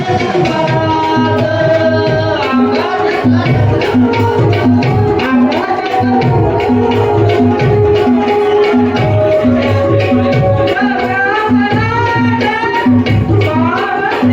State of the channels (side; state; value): both; identical; correlation 1.00